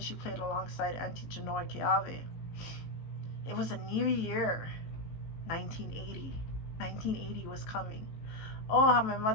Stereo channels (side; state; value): right; late; 18 ms